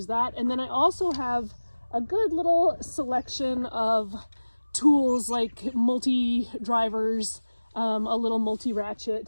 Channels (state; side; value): inverted; both; correlation -1.00